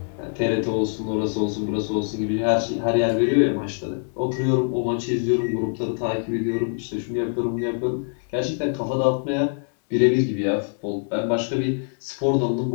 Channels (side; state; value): right; silent; digital silence